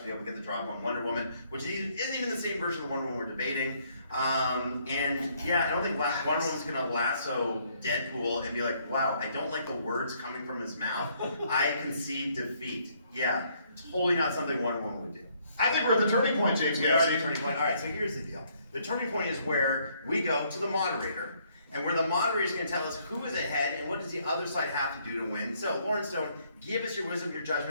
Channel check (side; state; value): both; inverted; correlation -0.68